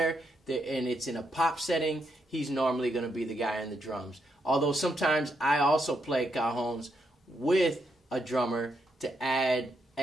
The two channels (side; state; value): both; normal; correlation 0.79